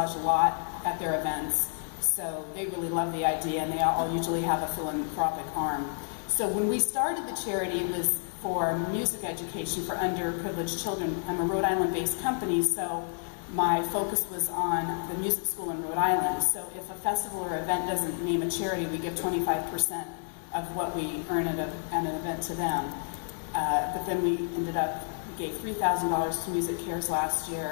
a lot at their events. So they really love the idea, and they all usually have a philanthropic arm. So when we started the charity, it was for music education for underprivileged children. I'm a Rhode Island-based company, so my focus was on the music school in Rhode Island. So if a festival or event doesn't name a charity, we give 25% of what we earn at an event to them. But then we gave $3,000 to Music Cares last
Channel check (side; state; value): right; silent; digital silence